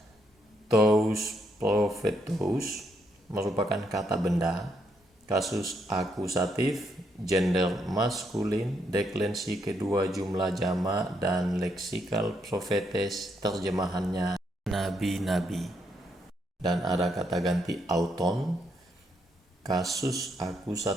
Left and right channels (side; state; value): both; normal; correlation 0.76